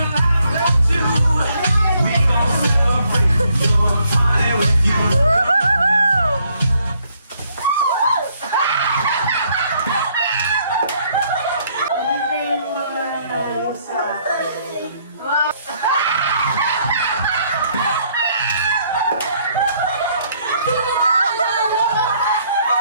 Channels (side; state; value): both; inverted; correlation -0.68